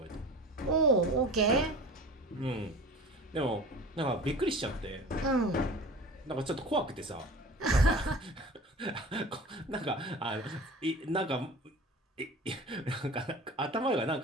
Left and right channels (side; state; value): both; normal; correlation 0.38